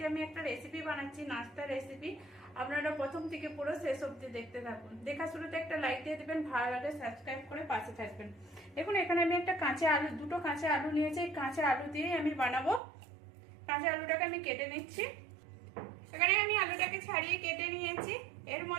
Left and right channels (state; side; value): drops out; left; at 12.8 s